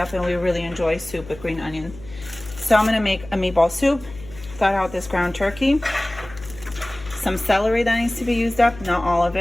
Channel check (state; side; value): noise; left; hum, 17 dB below the sound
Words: and we really enjoy soup with green onion. So I'm gonna make a meatball soup. Thought out this ground turkey, some celery that needs to be used up, not all of